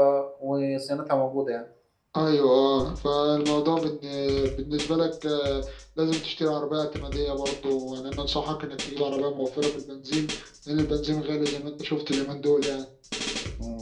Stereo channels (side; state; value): both; identical; correlation 1.00